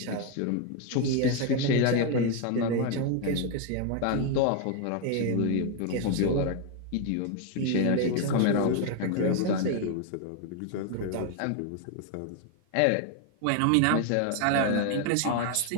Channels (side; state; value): both; different; correlation 0.01